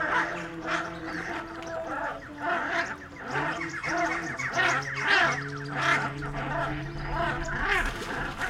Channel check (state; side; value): identical; both; correlation 1.00